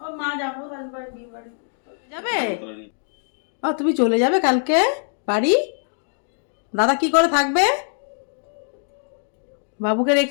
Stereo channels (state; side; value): silent; right; 63 dB below the other